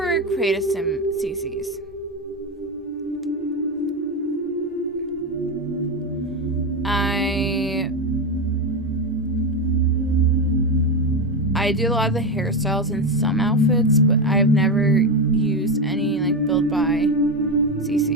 Create a Sim CCs. I do a lot of the hairstyles in some outfits, but I've never used any like built by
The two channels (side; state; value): both; normal; correlation 0.13